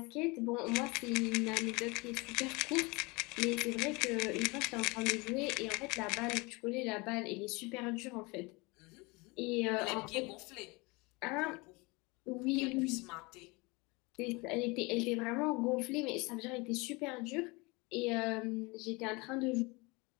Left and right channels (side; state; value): right; quieter; 26.1 dB